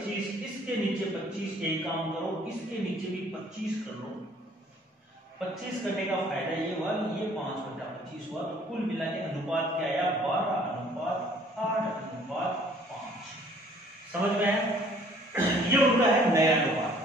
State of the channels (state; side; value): normal; both; correlation 0.57